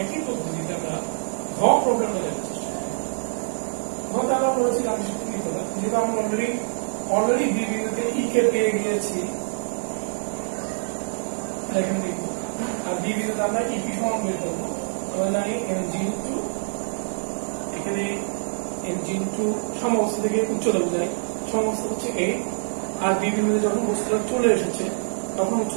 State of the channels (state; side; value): silent; left; digital silence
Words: একই পদ্ধতিতে আমরা ঘ প্রবলেমটা দেখার চেষ্টা করি। ঘতে আমরা বলেছি গাণিতিক কি করলাম, যেহেতু আমরা অলরেডি বি বিন্দুতে ই কে পেয়ে গিয়েছি, এখানে দেখব আর বি বিন্দুতে আমরা ইপি সমান বের করবো। আমরা জানি mg ইনটু এখানে mg ইনটু সমবস্তু থেকে উচ্চতা বোঝায়, সমবস্তু হচ্ছে a, আর বি বিন্দুতে যখন বস্তুটা চলে এসেছে তখন